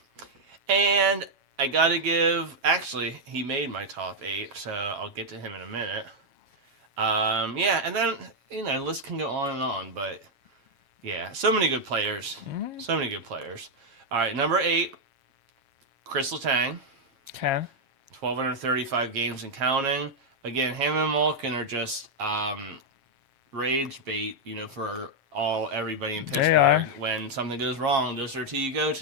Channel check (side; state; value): left; late; 7.4 ms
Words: And I got to give, actually, he made my top 8, so I'll get to him in a minute. And then, the list can go on and on, but yeah, so many good players. Mm-hmm. So many good players. All right, number 8, Chris Letang. Okay. 1,235 games and counting. Again, him and Malkin are just rage bait, for everybody in Pittsburgh. They are. When something goes wrong, those are 2 you go